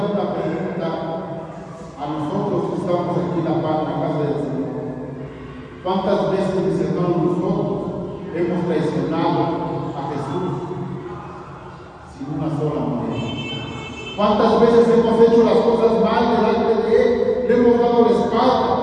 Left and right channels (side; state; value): both; identical; correlation 1.00